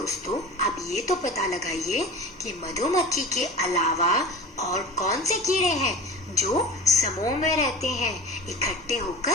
अब ये तो पता लगाइए कि मधुमक्खी के अलावा और कौन से कीड़े हैं जो समूह में रहते हैं, इकट्ठे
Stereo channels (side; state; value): both; normal; correlation 0.35